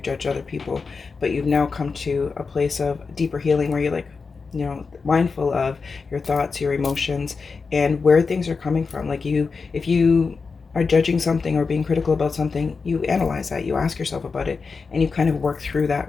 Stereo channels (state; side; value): quieter; right; 4.8 dB